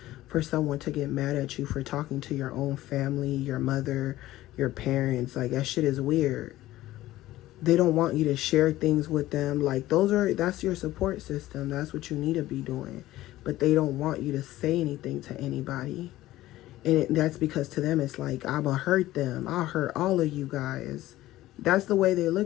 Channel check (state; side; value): quieter; right; 15.9 dB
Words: for someone to get mad at you for talking to your own family, your mother, your parents. Like, that shit is weird. They don't want you to share things with them. Like, that's your support system. That's what you need to be doing. But they don't want you to say anything to anybody. And that's because to them, it's like, I'm going to hurt them. I'll hurt all of you guys. That's the way they